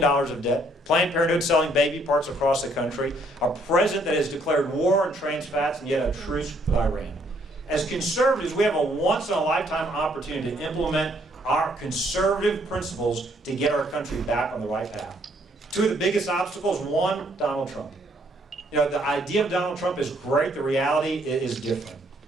of debt, Planned Parenthood selling baby parts across the country, a president that has declared war on trans fats and yet a truce with Iran. As conservatives, we have a once-in-a-lifetime opportunity to implement our conservative principles to get our country back on the right path. Two of the biggest obstacles, one, Donald Trump. You know, the idea of Donald Trump is great, the reality is different.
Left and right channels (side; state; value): both; normal; correlation 0.67